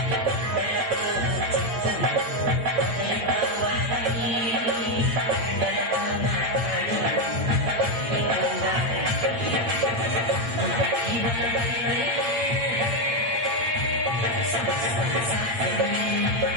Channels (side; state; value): left; late; 8.7 ms